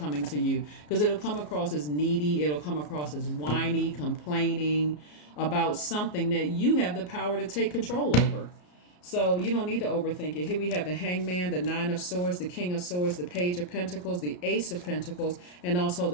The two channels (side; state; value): right; late; 34 ms